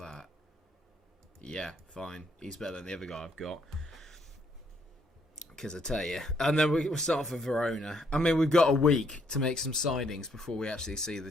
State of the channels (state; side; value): normal; both; correlation 0.70